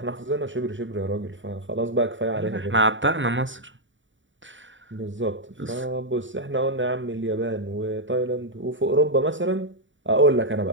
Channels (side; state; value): left; late; 0.55 ms